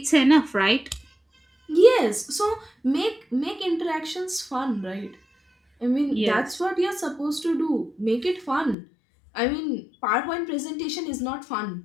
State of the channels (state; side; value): drops out; right; at 8.8 s